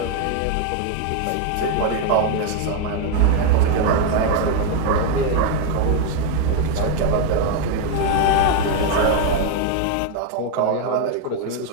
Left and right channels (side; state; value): both; different; correlation 0.01